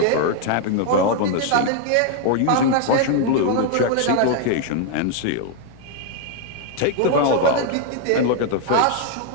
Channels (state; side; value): different; both; correlation 0.00